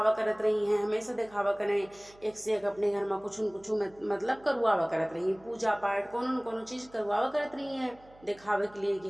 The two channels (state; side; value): noise; right; hum, 26 dB below the sound